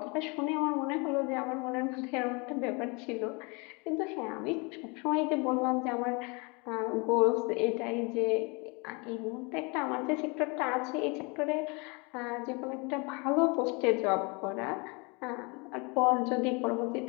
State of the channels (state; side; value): quieter; right; 29.8 dB